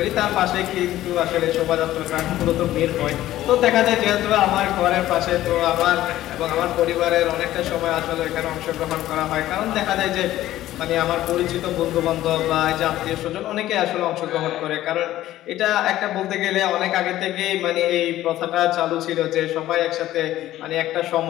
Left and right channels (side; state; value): right; quieter; 14.3 dB